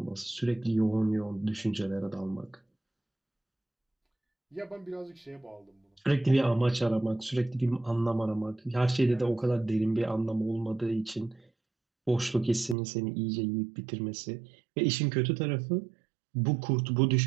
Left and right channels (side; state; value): left; drops out; at 12.8 s